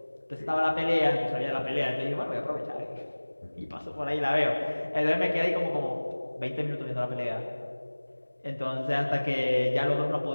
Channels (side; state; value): both; inverted; correlation -1.00